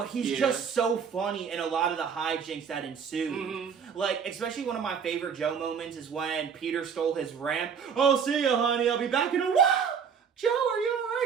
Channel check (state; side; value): quieter; left; 6.7 dB